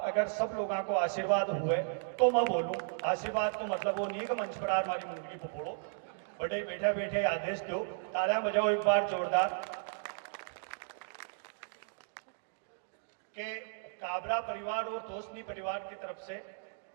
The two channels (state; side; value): silent; left; digital silence